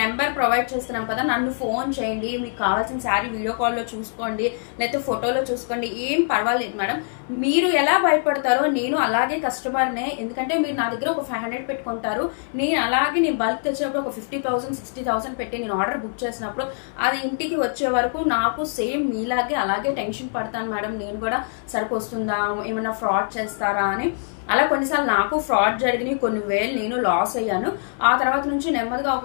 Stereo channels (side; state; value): right; silent; 60 dB below the other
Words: నెంబర్ ప్రొవైడ్ చేస్తున్నాం కదా, నన్ను ఫోన్ చేయండి, మీకు కావాల్సిన శారీ వీడియో కాల్లో చూసుకోండి, లేకపోతే ఫోటోలో చూసుకోండి, ఏం పర్వాలేదు మేడం. మీరు ఎలా భయపడతారో నేను అలాగే కస్టమర్నే, ఎందుకంటే మీరు నా దగ్గర ఒక 500 పెట్టుకుంటారు, నేను అలాగే నేను బల్క్ తెచ్చినప్పుడు ఒక 50,000 60,000 పెట్టి నేను ఆర్డర్ బుక్ చేసినప్పుడు అది ఇంటికి వచ్చే వరకు నాకు సేమ్ మీలాగే అలాగే టెన్షన్ పడతాను మేడం. నేను కూడా సరుకు వస్తుందా, ఏమన్నా ఫ్రాడ్ చేస్తారా అని. అలా కొన్నిసార్లు నాకు ఫ్రాడ్ జరిగినాయి, కొన్ని వేలు నేను లాస్ అయ్యాను. ఆ తర్వాత నుంచి నెమ్మదిగా